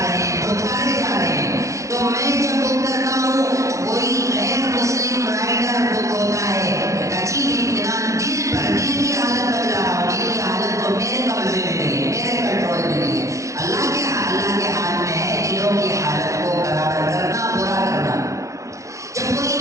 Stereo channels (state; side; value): late; left; 0.15 ms